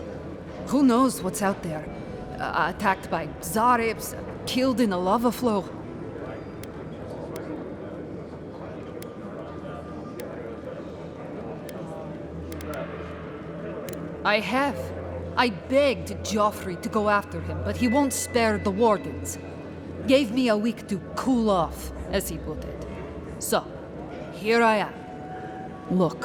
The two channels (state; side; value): identical; both; correlation 1.00